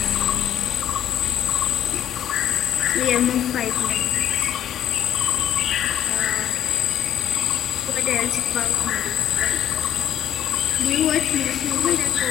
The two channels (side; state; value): right; quieter; 10.6 dB